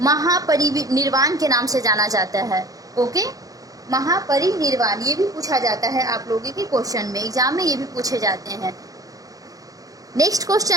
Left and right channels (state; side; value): late; left; 0.17 ms